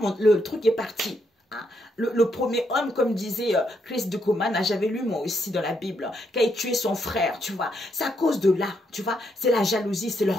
le truc est parti. Hein? Le premier homme, comme disait Chris Ducoman, j'avais lu moi aussi dans la Bible, qui a tué son frère, tu vois. C'est à cause de là, tu vois. C'est la jalousie, c'est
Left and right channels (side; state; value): both; normal; correlation 0.77